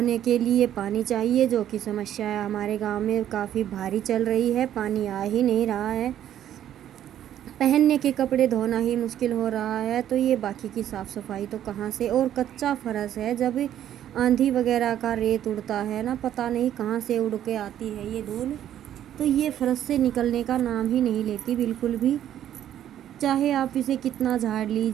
के लिए पानी चाहिए, जो कि समस्या है हमारे गांव में काफ़ी भारी चल रही है, पानी आ ही नहीं रहा है। पहनने के कपड़े धोना ही मुश्किल हो रहा है, तो ये बाकी की साफ़ सफाई तो कहाँ से। और कच्चा फर्श है, जब आंधी वगैरह का रेत उड़ता है ना, पता नहीं कहाँ से उड़ के आती है ये धूल, तो ये फर्श से निकलने का नाम ही नहीं लेती बिल्कुल भी। चाहे आप इसे कितना झाड़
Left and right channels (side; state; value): left; quieter; 11.1 dB